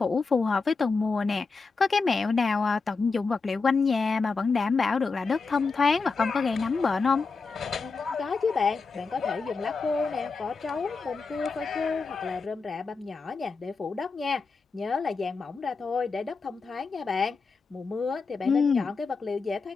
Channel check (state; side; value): quieter; right; 4.5 dB